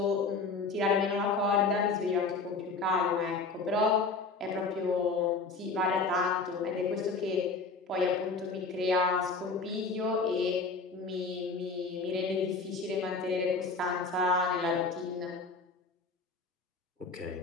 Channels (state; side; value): quieter; right; 4.2 dB